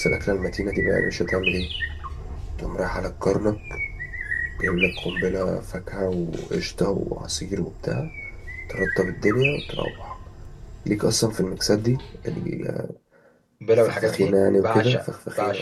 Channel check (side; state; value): both; identical; correlation 1.00